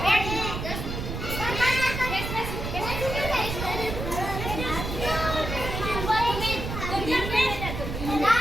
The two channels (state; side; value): noise; right; rumble, 5 dB below the sound